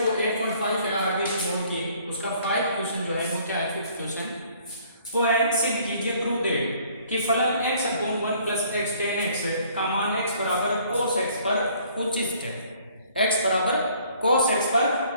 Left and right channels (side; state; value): both; inverted; correlation -0.59